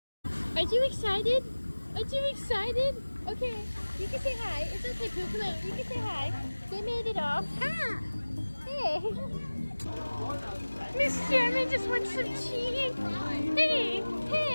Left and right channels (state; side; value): inverted; both; correlation -1.00